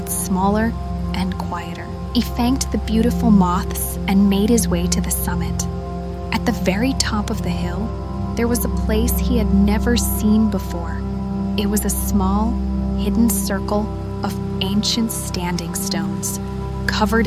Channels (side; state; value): both; identical; correlation 1.00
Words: smaller and quieter. He thanked the beautiful moths and made his way to the summit. At the very top of the hill, there was a place he had never seen before. It was a small, hidden circle of ancient standing stones, covered